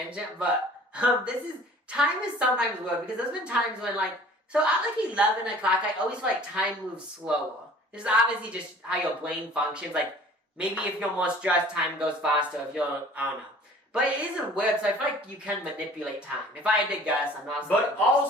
but time is sometimes weird, because there's been times when, like, so at like 11 o'clock, I always feel like time moves slower. This is obviously just how your brain functions. Like, maybe if you're more stressed, time goes faster. If you're, I don't know. But it isn't weird, so I feel like you can manipulate time. If I had to guess, I'm not... But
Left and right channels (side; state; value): both; normal; correlation 0.49